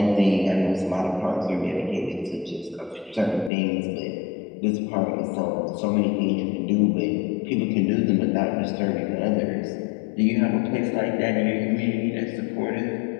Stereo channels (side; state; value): right; drops out; at 3.5 s